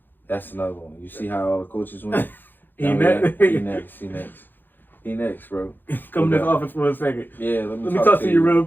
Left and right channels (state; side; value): late; right; 0.092 ms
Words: That's another one. You see how all the coaches went? He next, bro. Come to this office for a second. Yeah, let me talk to you real